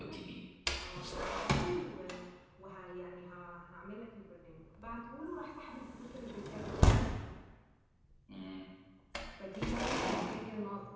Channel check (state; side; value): identical; both; correlation 1.00